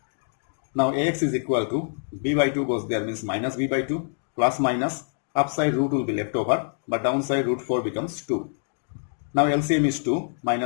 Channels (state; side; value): silent; right; digital silence